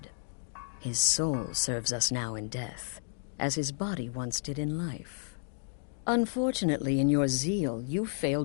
His soul serves us now in death, as his body once did in life. Unfortunately, in your zeal, you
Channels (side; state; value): right; silent; digital silence